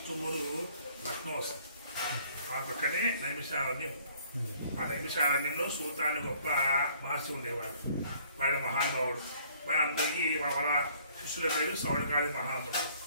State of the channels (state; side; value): inverted; both; correlation -0.59